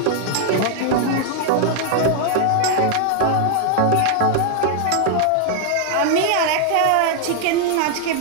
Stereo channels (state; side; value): different; both; correlation 0.00